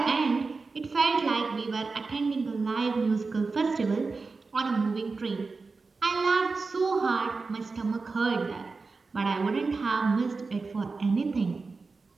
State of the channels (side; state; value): left; quieter; 4.2 dB